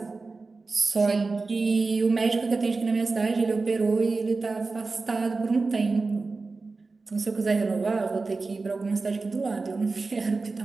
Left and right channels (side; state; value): left; quieter; 3.9 dB